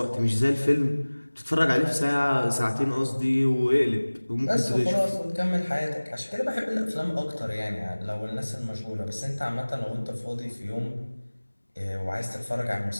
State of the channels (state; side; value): inverted; both; correlation -1.00